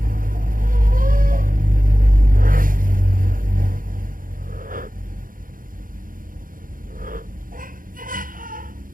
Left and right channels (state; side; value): late; left; 0.40 ms